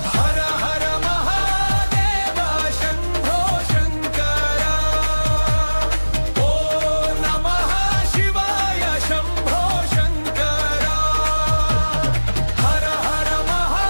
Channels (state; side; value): inverted; both; correlation -1.00